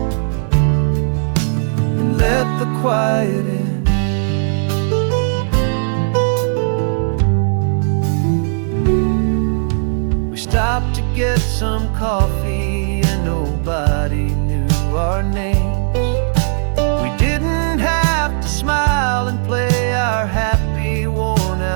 and let the quiet in. We stopped to get some coffee and nobody knew our names. We didn't have to smile and play our happy,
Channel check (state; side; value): silent; left; digital silence